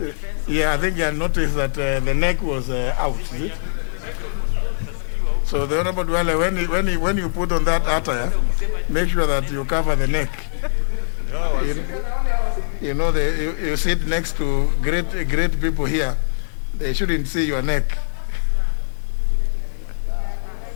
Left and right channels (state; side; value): silent; right; 65 dB below the other